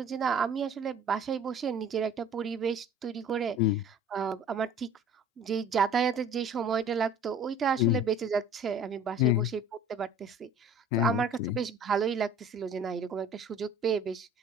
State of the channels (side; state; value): both; normal; correlation 0.47